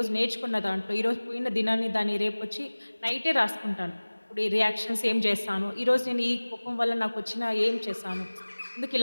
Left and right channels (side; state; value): both; inverted; correlation -1.00